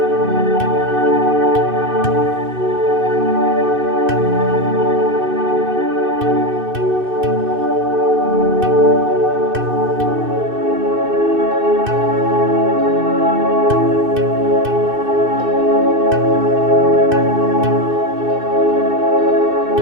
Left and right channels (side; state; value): left; late; 2.6 ms